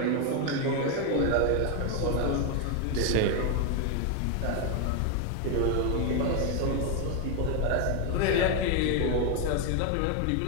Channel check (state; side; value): different; both; correlation 0.01